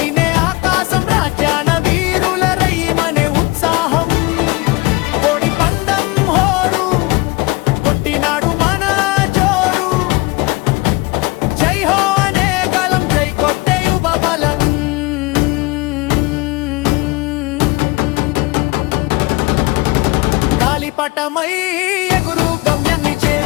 ఆకాశం రాజ్యాన వీరుల రయ్యమనే ఉత్సాహం కోడి పందం హోరు కొట్టినాడు మన జోరు జై హో అనే గలం జై కొట్టే యువ బలం గాలిపటమై ఎగురు గమ్యాన్ని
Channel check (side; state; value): right; quieter; 23.6 dB